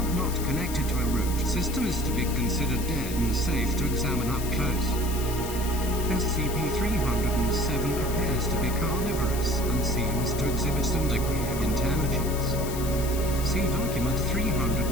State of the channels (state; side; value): noise; left; hiss, 10 dB below the sound